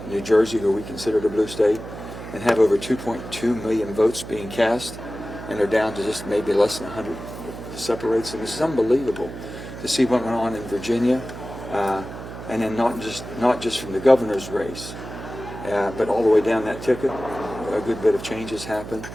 New Jersey, who we consider a blue state, and have over 2.2 million votes being cast, and they're down to just maybe less than 100 separates them. This is unbelievable to see what went on in Virginia, and then not just from the governor's race, but all the way down that ticket. A good bit of changes happened.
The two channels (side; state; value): right; noise; hum, 11 dB below the sound